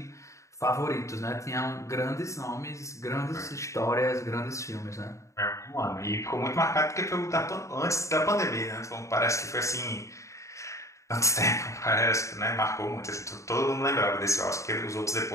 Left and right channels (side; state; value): right; late; 0.15 ms